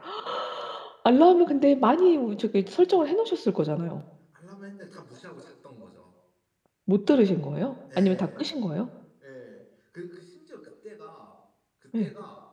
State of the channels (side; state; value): both; identical; correlation 1.00